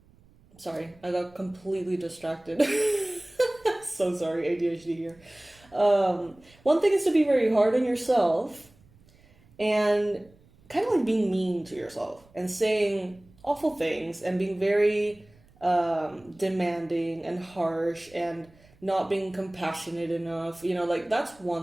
Sorry, I got completely distracted. So sorry, ADHD here. One thing is to be very hard on yourself and kind of like being mean to yourself and saying awful things and being very demanding and harsh and not being compassionate enough. You know, like that's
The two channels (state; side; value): noise; right; rumble, 29 dB below the sound